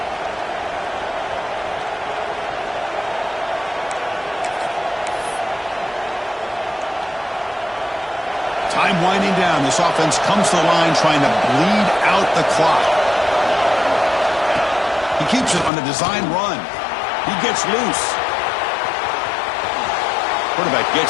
Time winding down. This offense comes to the line trying to bleed out the clock. He keeps it on the design run. He gets loose. Quarterback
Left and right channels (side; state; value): right; drops out; at 15.7 s